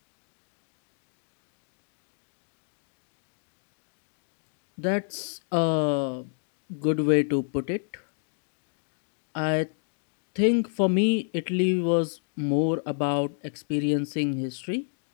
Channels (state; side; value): silent; right; digital silence